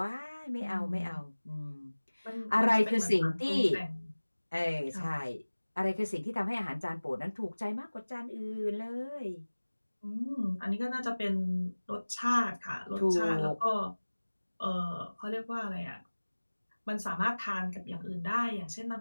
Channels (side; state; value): both; inverted; correlation -1.00